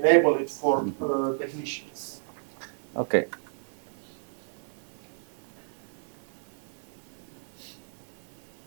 it for technicians. Okay.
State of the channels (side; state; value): left; silent; digital silence